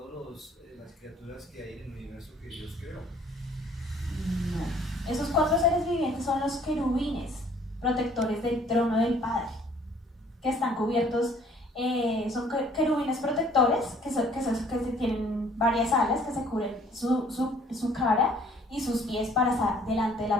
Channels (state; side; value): normal; both; correlation 0.57